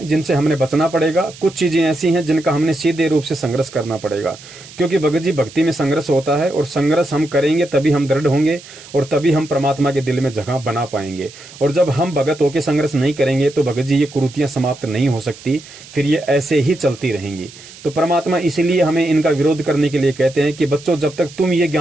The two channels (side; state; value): right; noise; hiss, 19 dB below the sound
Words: जिनसे हमने बचना पड़ेगा, कुछ चीजें ऐसी हैं जिनका हमने सीधे रूप से संघर्ष करना पड़ेगा, क्योंकि भगत जी भक्ति में संघर्ष होता है और संघर्ष हम करेंगे तभी हम दृढ़ होंगे और तभी हम परमात्मा के दिल में जगह बना पाएंगे। और जब हम भगत होकर संघर्ष नहीं करेंगे तो भगत जी ये कुरीतियां समाप्त नहीं हो सकती, फिर ये ऐसे ही चलती रहेंगी। तो परमात्मा इसीलिए हमें इनका विरोध करने के लिए कहते हैं कि बच्चों, जब तक तुम ये